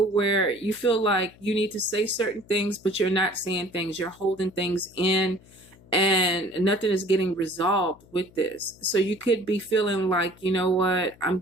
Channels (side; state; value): left; noise; hum, 26 dB below the sound